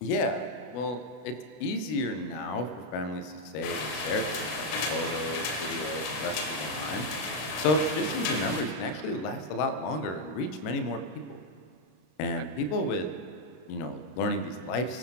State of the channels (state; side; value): late; right; 33 ms